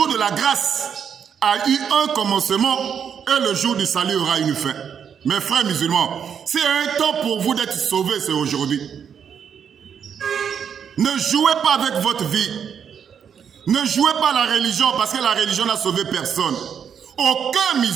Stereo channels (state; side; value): quieter; left; 7.7 dB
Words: de la grâce, a eu un commencement et le jour du salut aura une fin. Mes frères musulmans, s'il y a un temps pour vous d'être sauvés, c'est aujourd'hui. Ne jouez pas avec votre vie. Ne jouez pas la religion parce que la religion n'a sauvé personne. Aucun